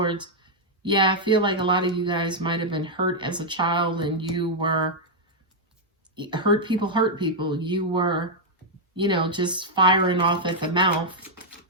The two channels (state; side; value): normal; both; correlation -0.03